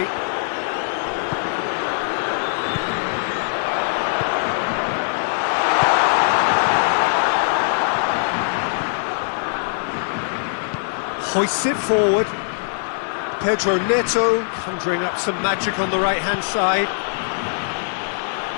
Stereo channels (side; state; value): right; silent; digital silence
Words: Hoists it forward. Pedro Neto conjuring up some magic on the right-hand side.